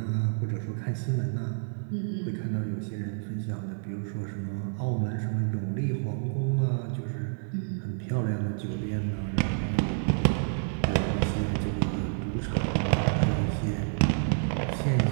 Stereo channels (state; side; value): silent; left; digital silence